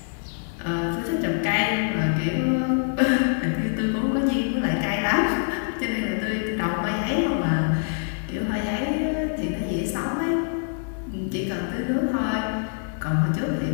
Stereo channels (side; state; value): right; silent; digital silence